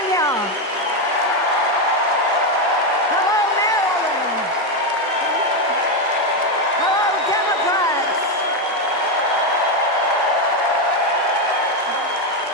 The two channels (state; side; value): normal; both; correlation 0.07